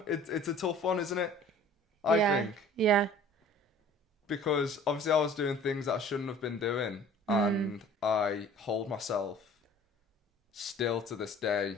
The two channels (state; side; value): normal; both; correlation 0.48